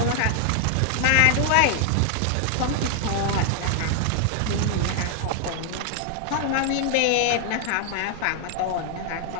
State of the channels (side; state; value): both; different; correlation 0.00